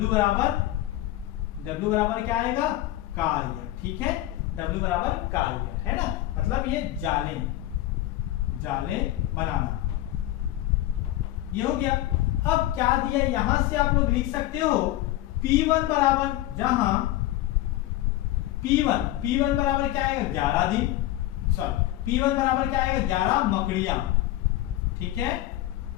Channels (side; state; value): right; quieter; 15.1 dB